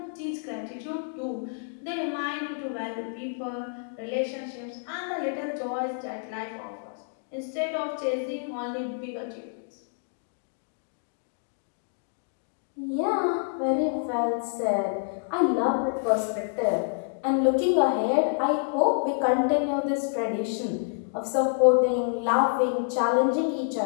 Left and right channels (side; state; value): right; silent; digital silence